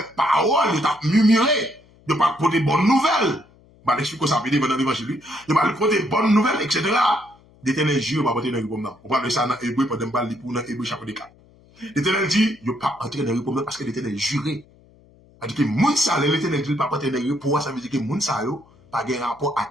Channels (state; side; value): noise; left; hum, 28 dB below the sound